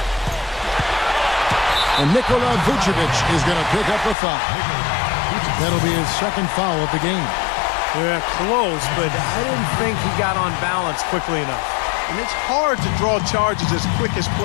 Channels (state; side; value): drops out; right; at 4.2 s